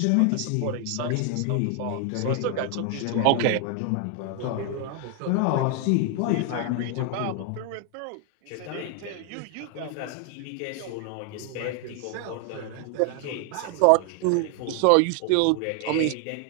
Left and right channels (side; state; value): both; different; correlation 0.01